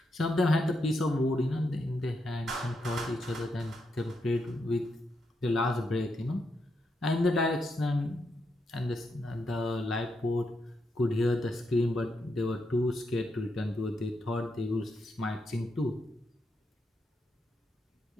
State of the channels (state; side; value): normal; both; correlation 0.82